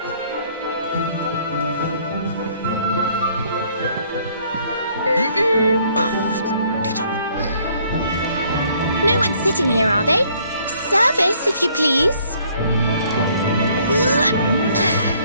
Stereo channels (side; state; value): both; inverted; correlation -0.62